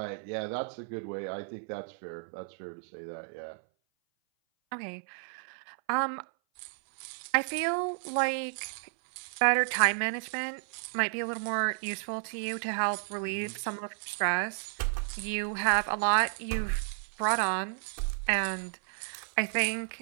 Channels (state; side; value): silent; left; 56 dB below the other